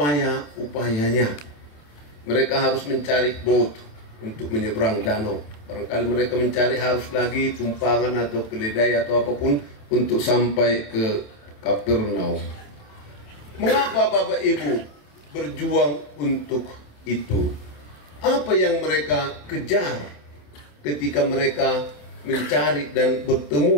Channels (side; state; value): right; late; 27 ms